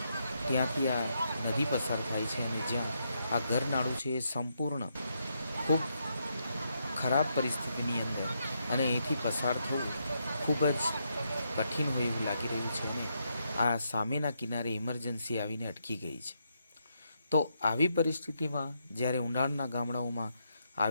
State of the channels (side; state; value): both; inverted; correlation -0.79